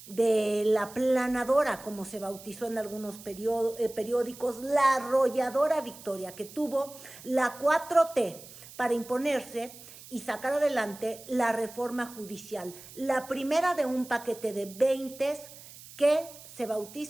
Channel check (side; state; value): right; noise; hiss, 18 dB below the sound